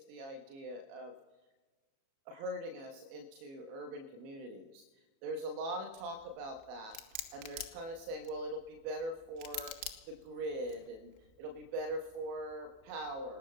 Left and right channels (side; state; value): left; late; 36 ms